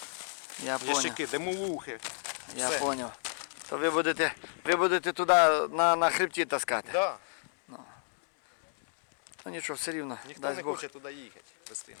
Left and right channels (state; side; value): silent; right; 56 dB below the other